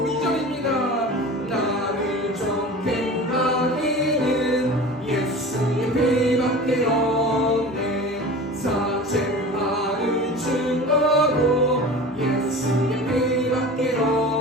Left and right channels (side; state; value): both; normal; correlation 0.36